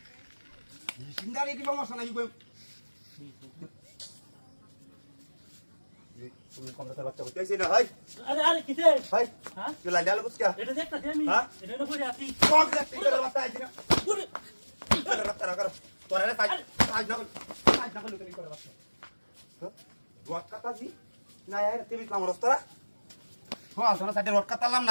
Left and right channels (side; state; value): both; inverted; correlation -1.00